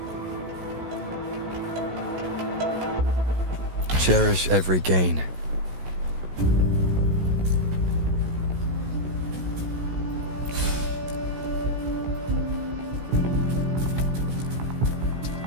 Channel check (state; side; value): late; left; 16 ms